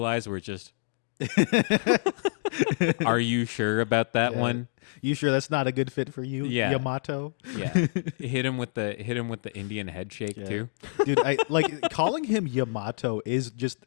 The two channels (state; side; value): silent; right; digital silence